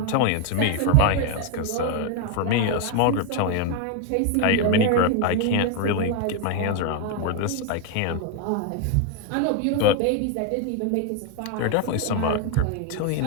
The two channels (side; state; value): both; different; correlation 0.01